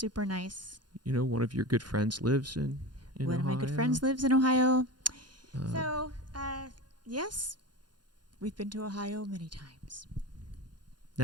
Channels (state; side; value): late; left; 0.70 ms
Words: nice. One of your good friends lives in One Ohio. of my good friends lives in Ohio. So, yes, we've been to Ohio many times.